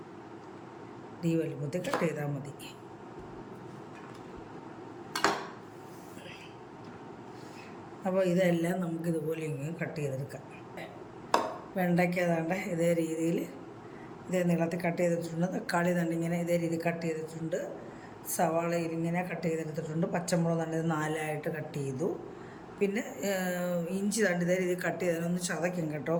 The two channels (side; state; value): both; identical; correlation 1.00